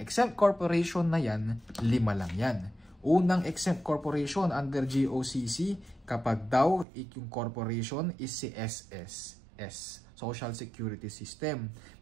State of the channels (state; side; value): drops out; left; at 6.9 s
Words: exempt corporation na yan, 5 lang yan. Unang exempt corporation under GOCC, kapag daw yung corporation is si SSS, Social Security System.